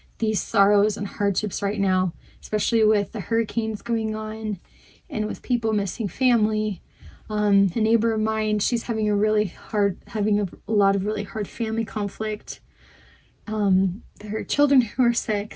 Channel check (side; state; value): both; identical; correlation 1.00